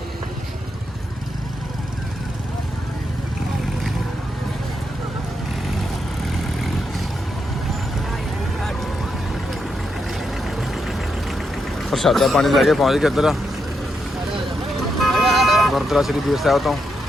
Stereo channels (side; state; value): both; normal; correlation 0.82